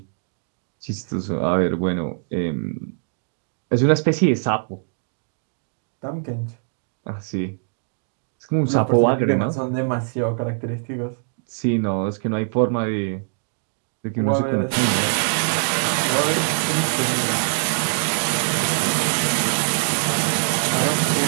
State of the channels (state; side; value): silent; left; digital silence